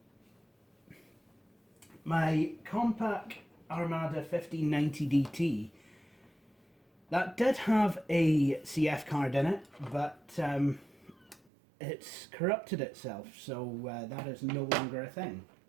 My Compaq Armada 1590 DT, that did have a CF card in it, but it's corrupted itself, so that is no longer a thing.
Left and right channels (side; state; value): left; drops out; at 11.4 s